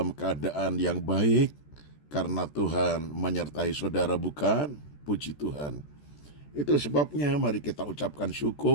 keadaan yang baik karena Tuhan menyertai saudara, bukan? Puji Tuhan. Itu sebabnya mari kita ucapkan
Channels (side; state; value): right; late; 14 ms